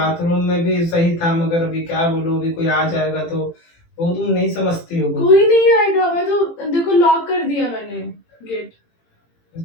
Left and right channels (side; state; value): right; late; 18 ms